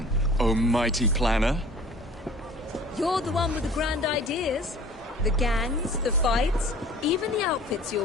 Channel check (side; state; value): both; normal; correlation 0.46